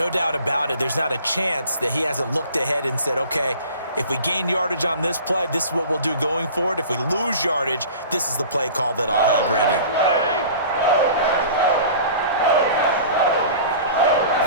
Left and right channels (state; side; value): inverted; both; correlation -0.42